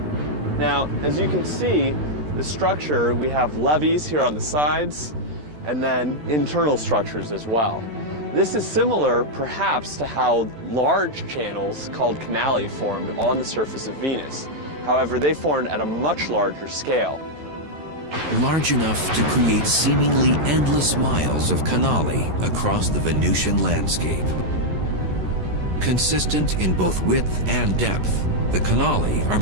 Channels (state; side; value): late; left; 13 ms